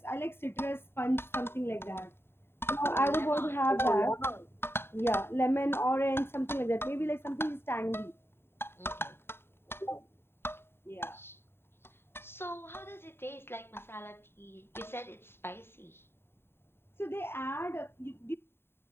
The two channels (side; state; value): right; late; 0.11 ms